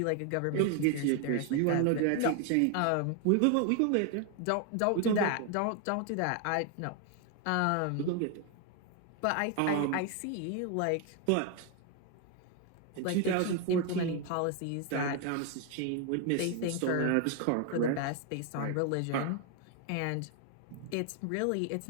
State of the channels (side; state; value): both; different; correlation 0.01